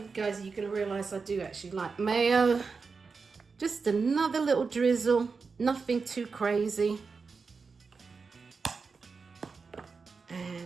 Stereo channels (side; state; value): left; quieter; 4.8 dB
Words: guys, you're going to realize I do actually like mayo. Just another little drizzle, nothing too crazy.